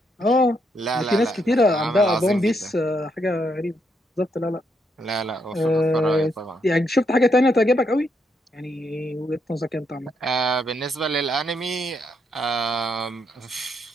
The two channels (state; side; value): normal; both; correlation 0.77